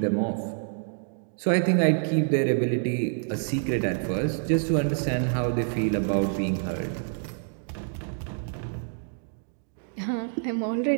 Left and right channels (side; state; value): left; silent; digital silence